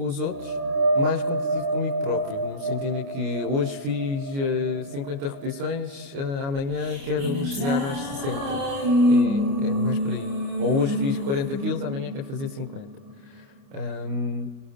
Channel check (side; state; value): left; late; 29 ms